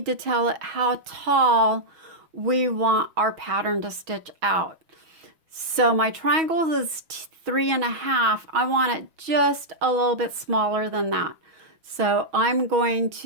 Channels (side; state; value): left; late; 6.2 ms